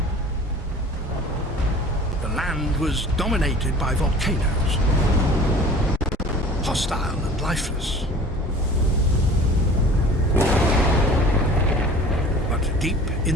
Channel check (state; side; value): normal; both; correlation 0.44